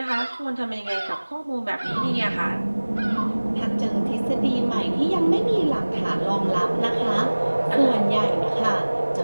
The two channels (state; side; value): inverted; both; correlation -1.00